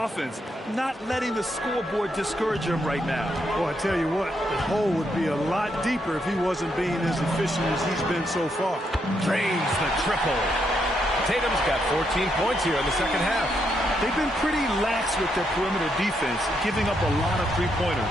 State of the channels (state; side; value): normal; both; correlation 0.78